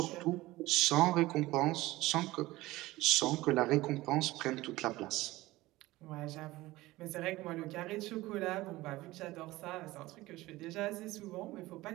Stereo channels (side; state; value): left; quieter; 18.6 dB